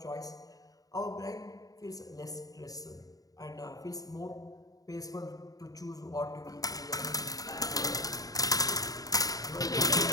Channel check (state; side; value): late; right; 0.18 ms